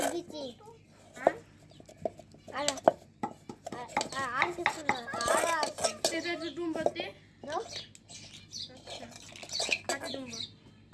বিচি হ্যাঁ, আর আর কিছু না আর আছে এটা একটু ডুম্বতে। দাও আচ্ছা, কাটি ডুম্ব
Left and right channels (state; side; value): identical; both; correlation 1.00